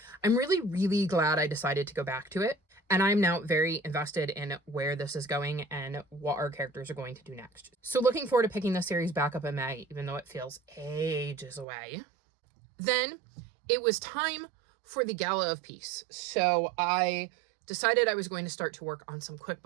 I'm really, really glad I decided to go back to it. And I'm now very invested in where this is going and what our characters are going to do next. So looking forward to picking this series back up in May, even though it feels ages away. Then it was time for the Gala of Peace. So I decided I was going to start to work on some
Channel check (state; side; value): drops out; left; at 11.7 s